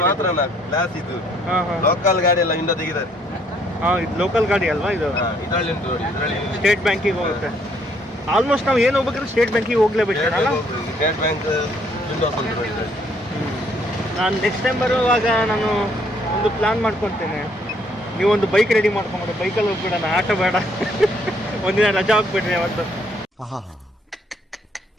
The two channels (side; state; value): both; normal; correlation 0.67